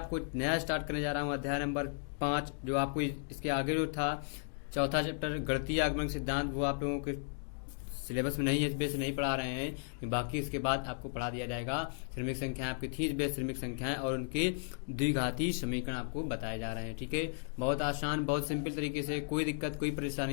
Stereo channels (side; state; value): right; silent; digital silence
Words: नया स्टार्ट करने जा रहा हूं, अध्याय नंबर 5, जो आपको इसके आगे जो था चौथा चैप्टर गणितीय आगमन सिद्धांत, वो आप लोगों के सिलेबस में नहीं है, इस बेस नहीं पढ़ा रहे हैं। बाकी इसके बाद आपको पढ़ा दिया जाएगा। श्रमिक संख्याएं आपकी थी, इस बेस श्रमिक संख्याएं और उनके द्विघाती समीकरण आपको बताए जा रहे हैं। ठीक है, बहुत आसान, बहुत सिंपल तरीके से, कोई दिक्कत कोई